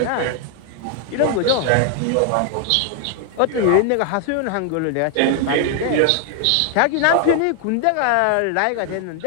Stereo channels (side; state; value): both; different; correlation 0.00